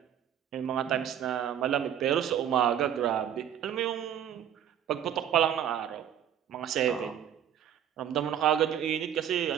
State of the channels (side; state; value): left; quieter; 9.8 dB